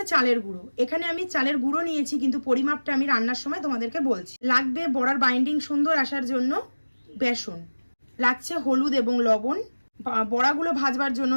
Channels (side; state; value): both; inverted; correlation -1.00